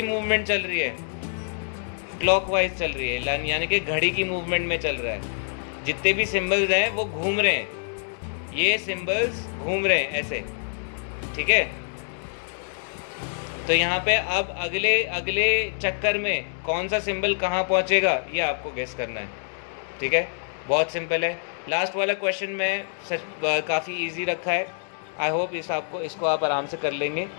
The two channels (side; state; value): right; silent; digital silence